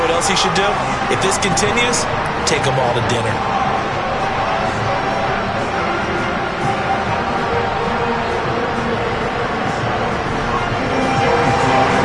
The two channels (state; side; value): identical; both; correlation 1.00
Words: else he should do? If this continues, take them all to dinner.